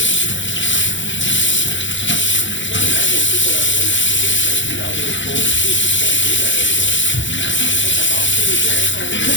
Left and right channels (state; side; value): late; right; 0.54 ms